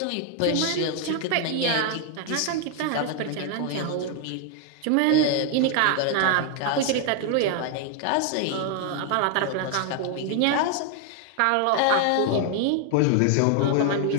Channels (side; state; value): both; different; correlation 0.00